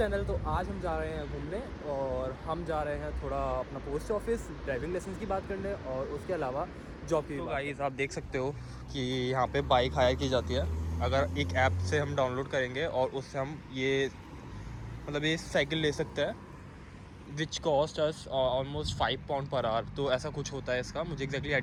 तो आज हम जा रहे हैं घूमने और हम जा रहे हैं थोड़ा अपना पोस्ट ऑफिस ड्राइविंग लाइसेंस की बात करने और उसके अलावा जॉब की। तो गाइस आप देख सकते हो कि यहाँ पे बाइक हायर की जाती है। अगर एक ऐप से हम डाउनलोड करेंगे और उससे हम ये ये साइकिल ले सकते हैं which cost us almost £5 per hour. तो ऐसा कुछ होता है इसका, मुझे एग्जैक्टली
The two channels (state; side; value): identical; both; correlation 1.00